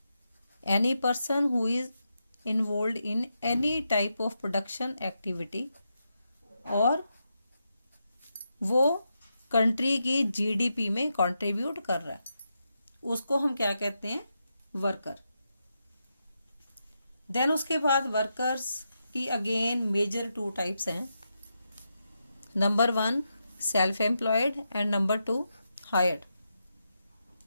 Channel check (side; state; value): both; inverted; correlation -0.85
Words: Any person who is involve in any type of production activity, और वो कंट्री की जीडीपी में कंट्रीब्यूट कर रहा है, उसको हम क्या कहते हैं? वर्कर. देन उसके बाद वर्कर्स की अगेन मेजर टू टाइप्स हैं. Number 1 self employed and number 2 hired.